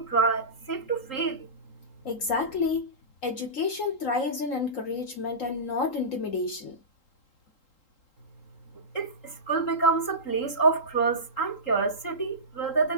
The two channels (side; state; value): right; late; 3.8 ms